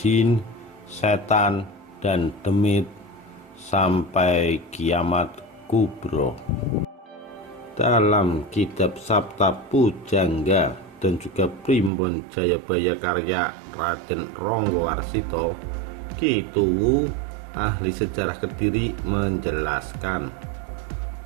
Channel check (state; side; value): drops out; left; at 11.9 s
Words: setan, dan demit sampai kiamat kubro. Dalam kitab Sabta Pujangga dan juga Primbon Jayabaya karya Raden Ronggowarsito, Ki Tuwu, ahli sejarah Kediri, menjelaskan,